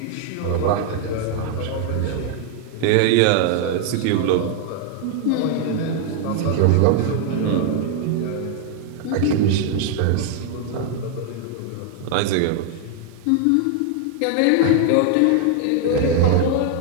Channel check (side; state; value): both; different; correlation 0.00